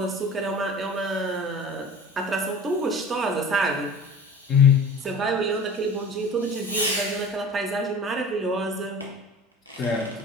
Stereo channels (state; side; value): normal; both; correlation 0.41